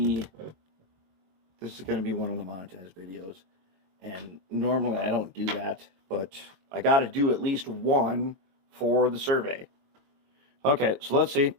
one of the monetized videos. And normally I don't do that, but I got to do at least one for the survey. Okay, so let's see.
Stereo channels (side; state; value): left; late; 22 ms